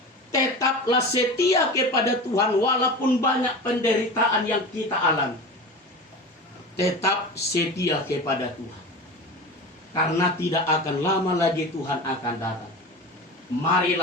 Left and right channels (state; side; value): normal; both; correlation 0.30